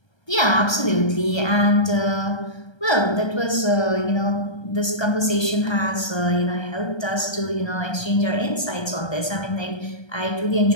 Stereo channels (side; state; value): right; late; 1.3 ms